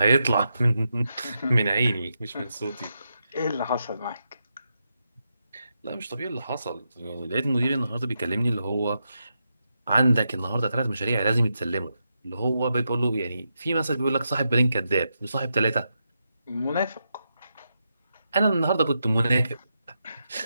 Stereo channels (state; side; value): inverted; both; correlation -0.85